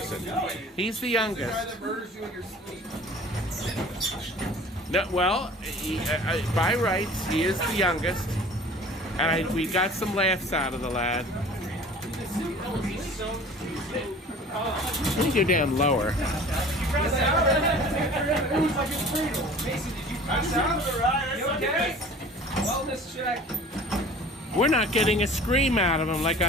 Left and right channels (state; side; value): normal; both; correlation 0.45